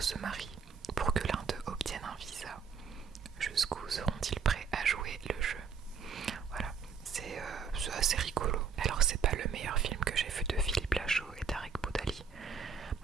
se marient pour que l'un d'eux obtienne un visa. Jusqu'où seront-ils prêts à jouer le jeu? Voilà, c'est assez rigolo. Alors c'est pas le meilleur film que j'ai vu de Philippe Lachaud et Tarek Boudali,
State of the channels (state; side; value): quieter; left; 6.1 dB